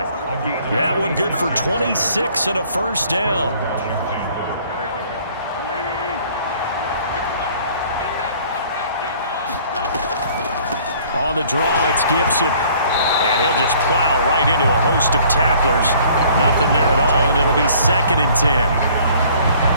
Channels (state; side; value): inverted; both; correlation -0.56